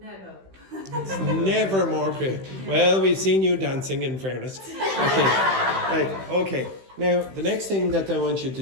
Never. It's never more creative. Well, we've seen you dancing, in fairness. Okay. Right. Okay. Now, the next thing that I want you to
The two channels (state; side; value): late; left; 16 ms